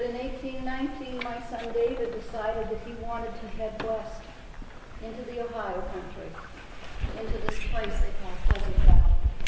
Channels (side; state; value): both; identical; correlation 1.00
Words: in 1819, my son David decided that he wanted to head west into the Ohio country, into this place they call Pleasant Valley.